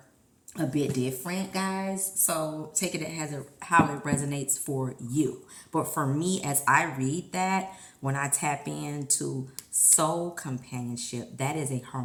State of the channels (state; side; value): identical; both; correlation 1.00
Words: a bit different, guys. So take it as how it resonates for you. But for me, as I read that, when I tap into soul companionship, that is a